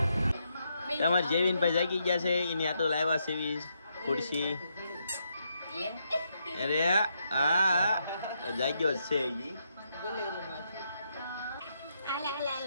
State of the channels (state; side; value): inverted; both; correlation -0.79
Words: તમારે જેવીનભાઈ જાગી ગયા છે. એની આટો લાવ્યા સેવી ખુરશી. અરે હા જાગ્યો છે.